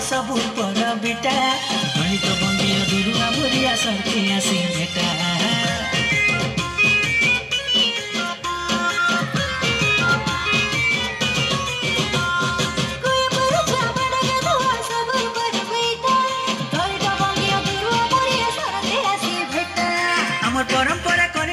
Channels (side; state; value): both; identical; correlation 1.00